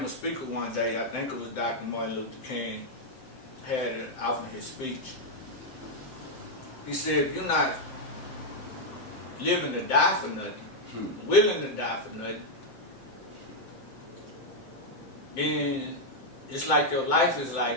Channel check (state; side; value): late; right; 7.7 ms